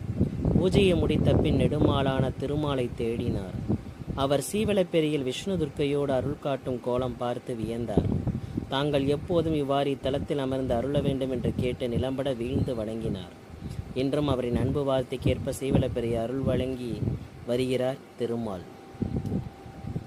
பூஜையை முடித்த பின் நெடுமாலான திருமாலை தேடினார். அவர் சீவலப்பேரியில் விஷ்ணு துர்க்கையோடு அருள் காட்டும் கோலம் பார்த்து வியந்தார். தாங்கள் எப்போதும் இவ்வாறு இத்தலத்தில் அமர்ந்து அருள வேண்டும் என்று கேட்டு நிலம்பட வீழ்ந்து வணங்கினார். இன்றும் அவரின் அன்பு வார்த்தைக்கேற்ப சீவலப்பேரி அருள் வழங்கி வருகிறார் திருமால்.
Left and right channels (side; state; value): both; identical; correlation 1.00